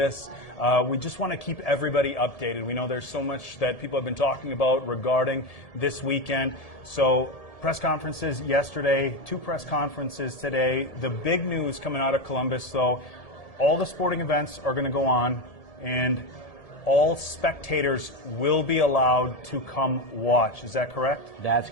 We just want to keep everybody updated. We know there's so much that people have been talking about regarding this weekend. So, press conferences yesterday, 2 press conferences today. The big news coming out of Columbus, though, all the sporting events are going to go on, and all spectators will be allowed to come watch. Is that correct? That's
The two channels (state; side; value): late; right; 1.7 ms